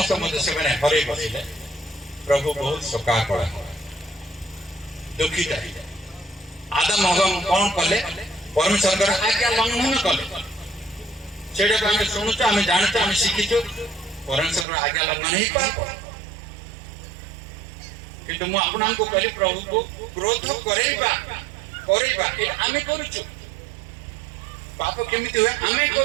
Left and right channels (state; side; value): drops out; left; at 14.7 s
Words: ମଧ୍ୟ ସେମାନେ ହରେଇ ବସିଲେ। ପ୍ରଭୁ ବହୁତ ଶୋକାକୁଳ, ଦୁଃଖିତ ହେଲେ। ଆଦାମ ହବା କଣ କଲେ? ପରମେଶ୍ୱରଙ୍କର ଆଜ୍ଞା ଲଙ୍ଘନ କଲେ। ସେଇଟାକୁ ଆମେ ଶୁଣୁଛୁ, ଆମେ ଜାଣୁଛୁ, ଆମେ ଶିଖିଛୁ। ପରମେଶ୍ୱରଙ୍କର ଆଜ୍ଞା ଲଙ୍ଘନ ହିଁ ପାପ। କିନ୍ତୁ ମୁଁ ଆପଣଙ୍କୁ କହିଲି, ପ୍ରଭୁକୁ କ୍ରୋଧ କରେଇବା ଏଇଟା ଆମେ କରୁଛୁ। ପାପ କେମିତି ହୁଏ? ଆମେ